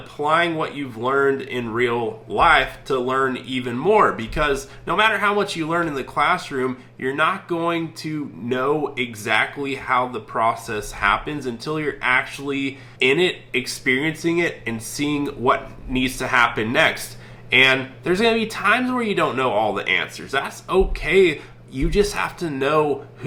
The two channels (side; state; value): both; identical; correlation 1.00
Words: what you've learned in real life to learn even more. Because no matter how much you learn in the classroom, you're not going to know exactly how the process happens until you're actually in it, experiencing it, and seeing what needs to happen next. And there's going to be times where you don't know all the answers. That's okay. You just have to know